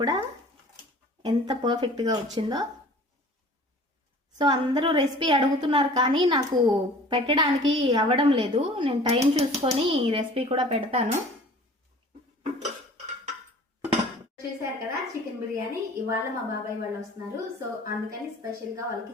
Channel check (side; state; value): both; normal; correlation 0.46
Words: కూడా ఎంత పర్ఫెక్ట్గా వచ్చిందో. సో అందరూ రెసిపీ అడుగుతున్నారు కానీ నాకు పెట్టడానికి అవ్వడం లేదు. నేను టైం చూసుకొని రెసిపీ కూడా పెడతాను. చూసారు కదా చికెన్ బిర్యానీ. ఇవాళ మా బాబాయ్ వాళ్ళు వస్తున్నారు, సో అందుకని స్పెషల్ గా వాళ్ళకి